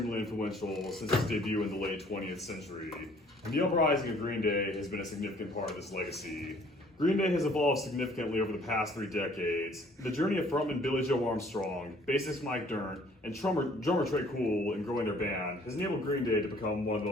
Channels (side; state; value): both; normal; correlation 0.58